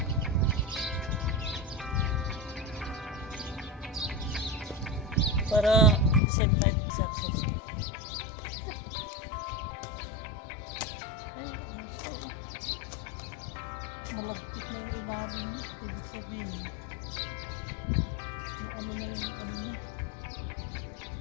Para same time success. Malagkit na yung ilalim niya. Ibig sabihin yung ano na yung ano niya.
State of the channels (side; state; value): right; drops out; at 6.2 s